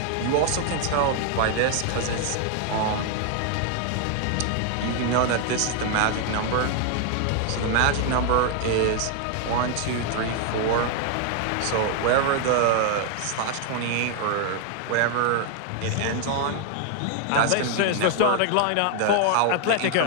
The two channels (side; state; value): both; different; correlation 0.00